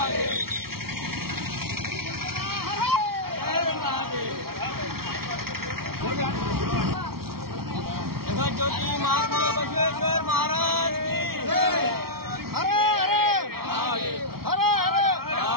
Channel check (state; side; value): late; left; 0.94 ms